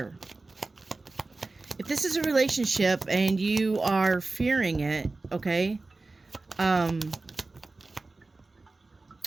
If this is a relationship and you are fearing it, okay, I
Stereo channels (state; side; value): quieter; left; 3.4 dB